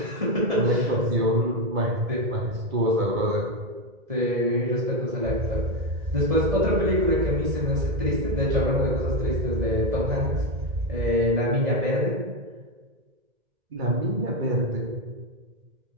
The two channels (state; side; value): late; left; 1.7 ms